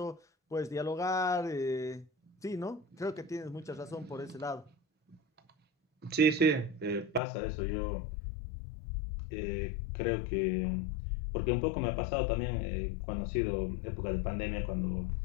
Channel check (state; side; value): drops out; right; at 7.2 s